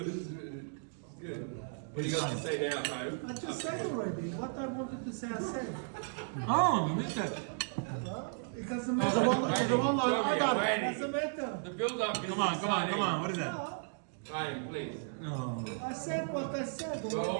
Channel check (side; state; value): left; silent; digital silence